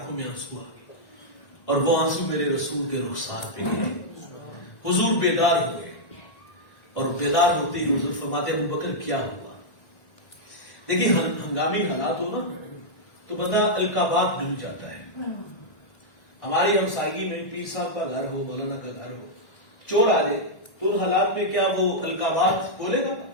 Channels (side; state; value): right; late; 1.6 ms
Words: میں آنسو آ گئے اور وہ آنسو میرے رسول کے رخسار پہ گئے۔ حضور بیدار ہوئے اور بیدار ہوتے ہی حضور فرماتے ابو بکر کیا ہوا؟ دیکھیے ہنگامی حالات ہو نا تو بندہ القابات بھول جاتا ہے۔ ہماری ہمسائیگی میں پیر صاحب کا گھر ہو، مولانا کا گھر ہو، چور آ جائے تو ان حالات میں کیا وہ القابات بولے گا؟